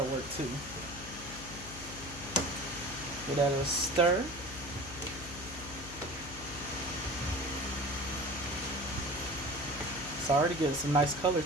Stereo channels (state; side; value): noise; left; hum, 13 dB below the sound